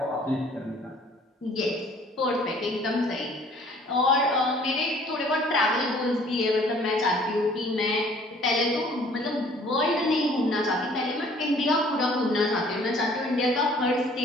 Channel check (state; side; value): normal; both; correlation 0.55